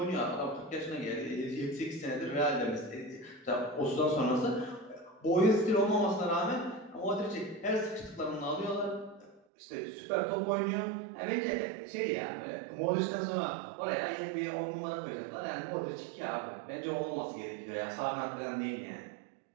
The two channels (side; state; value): left; drops out; at 9.4 s